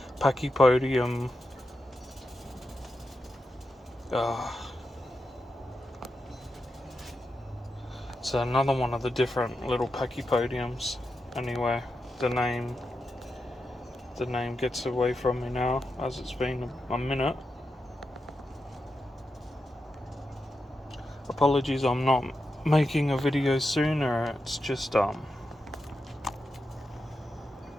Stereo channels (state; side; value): normal; both; correlation 0.88